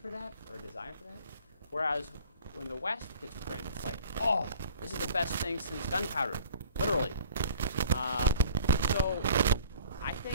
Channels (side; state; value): both; inverted; correlation -0.50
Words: that or a desire for that. Whereas when the West gets print, it's like, oh, this is the best thing since gunpowder, literally. So I